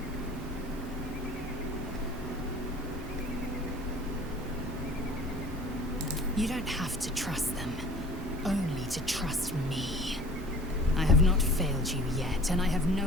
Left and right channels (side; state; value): right; noise; hum, 15 dB below the sound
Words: You don't have to trust them, only to trust me. I have not failed you yet, and I have